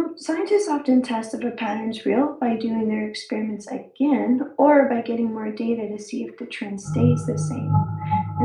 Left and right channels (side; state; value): both; identical; correlation 1.00